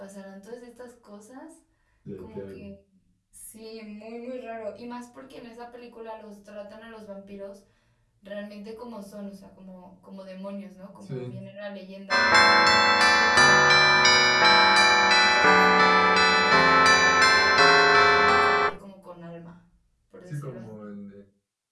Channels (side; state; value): both; identical; correlation 1.00